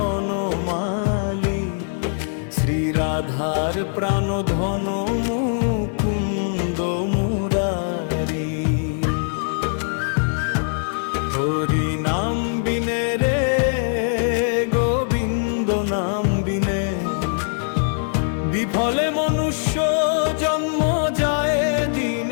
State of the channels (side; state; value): right; silent; digital silence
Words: শ্রী রাধার প্রাণধন মুকুন্দ মুরারি। হরি নাম বিনে রে গোবিন্দ নাম বিনে বিফলে মনুষ্য জন্ম যায়